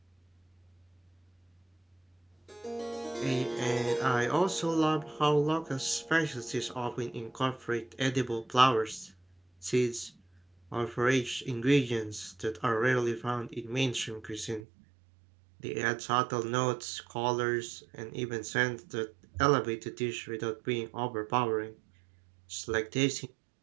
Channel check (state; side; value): drops out; left; at 14.6 s